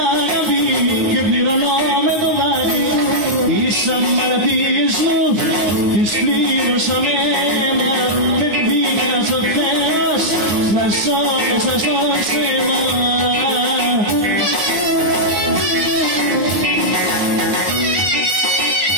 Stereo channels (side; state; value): left; late; 9.6 ms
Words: αγάπη και πληρώνω με το δάκρυ. Τις αμαρτίες μου τις πλήρωσα με αίμα, με πήγα στο Θεός να ζω μέσα στο σώμα.